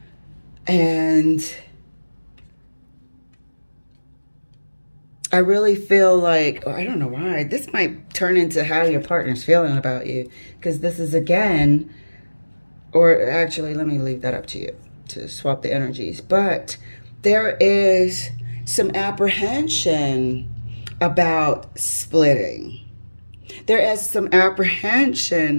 and I really feel like, I don't know why, this might turn into how your partner's feeling about you, because this is again, or actually, let me leave that up to you to swap the energies, but there is some apprehension about splitting. There is some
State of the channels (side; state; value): both; inverted; correlation -1.00